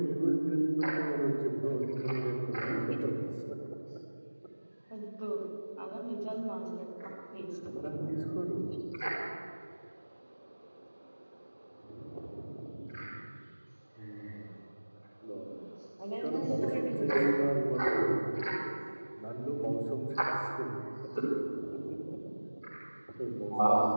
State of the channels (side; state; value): both; inverted; correlation -1.00